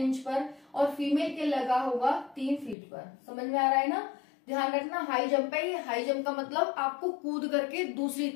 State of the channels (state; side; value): drops out; right; at 2.8 s